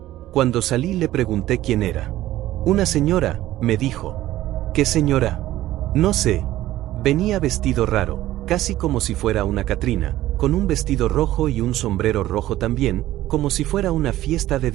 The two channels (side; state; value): left; quieter; 14.8 dB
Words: Cuando salí le pregunté quién era. Una señora, me dijo. ¿Qué señora? No sé. Venía vestido raro, casi como si fuera una Catrina, con un vestido rojo y un sombrero rojo también, como si fuera una fiesta de